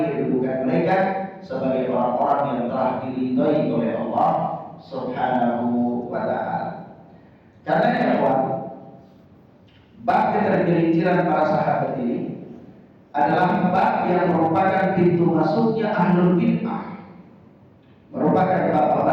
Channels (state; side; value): identical; both; correlation 1.00